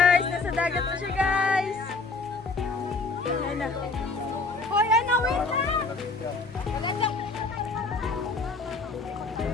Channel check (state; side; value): quieter; right; 3.8 dB